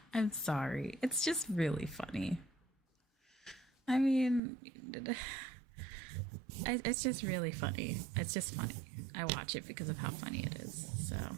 I'm sorry, it's just really funny. I mean, it's just really funny. It's just funny. I watch it because of how funny it is. So,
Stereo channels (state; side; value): drops out; left; at 4.4 s